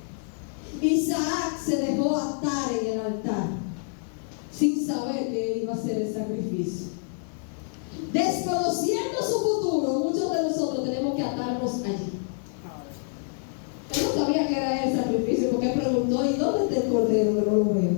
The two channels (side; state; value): right; silent; 59 dB below the other